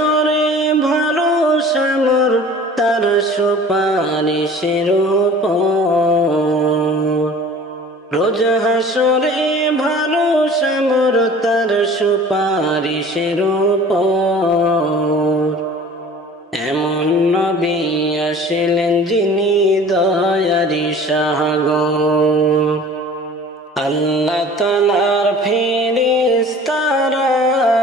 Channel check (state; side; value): normal; both; correlation 0.45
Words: ভরসা মোর তার সুপারিশের উপর রোজ হাসরে ভরসা মোর তার সুপারিশের উপর এমন নবী আসলেন যিনি দয়ারি সাগর আল্লাহ তাআলার ফেরেশতারা